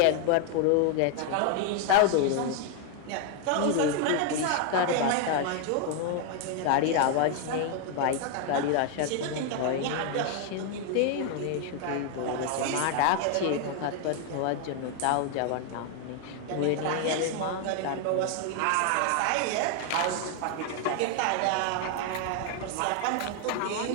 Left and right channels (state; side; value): different; both; correlation 0.00